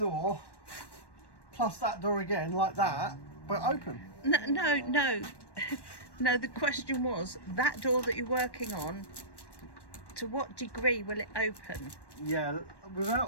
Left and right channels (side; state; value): right; late; 1.1 ms